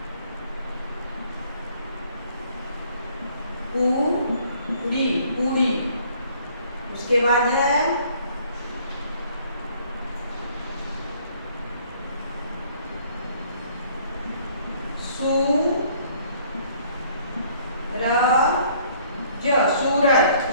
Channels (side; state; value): both; inverted; correlation -0.60